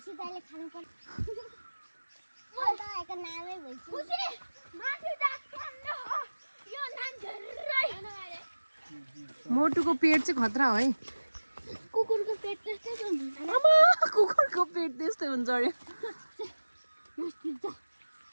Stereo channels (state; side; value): inverted; both; correlation -1.00